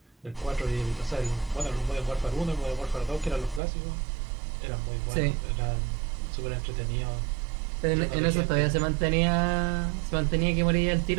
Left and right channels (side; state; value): left; drops out; at 3.6 s